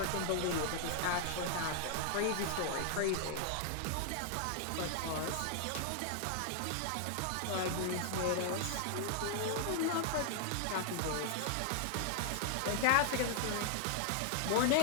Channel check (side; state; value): both; different; correlation 0.00